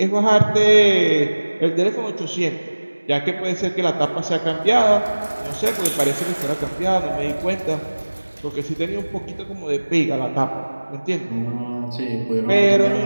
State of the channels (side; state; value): both; inverted; correlation -1.00